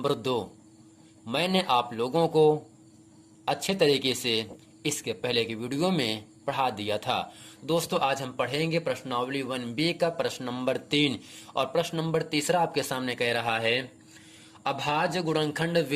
2 मैंने आप लोगों को अच्छे तरीके से इसके पहले की वीडियो में पढ़ा दिया था। दोस्तों, आज हम पढ़ेंगे प्रश्नावली 1B का प्रश्न नंबर 3 और प्रश्न नंबर तीसरा आपके सामने कह रहा है, अभाज्य गुणनखंड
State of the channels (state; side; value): identical; both; correlation 1.00